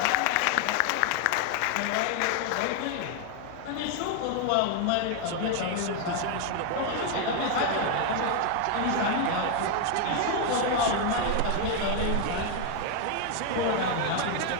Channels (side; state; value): both; different; correlation 0.01